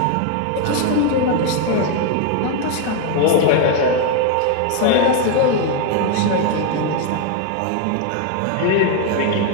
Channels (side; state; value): both; different; correlation 0.00